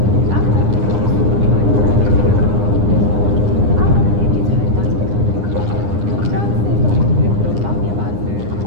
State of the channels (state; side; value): late; left; 9.8 ms